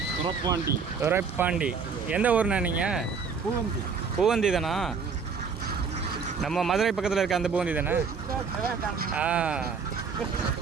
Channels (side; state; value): left; quieter; 5.7 dB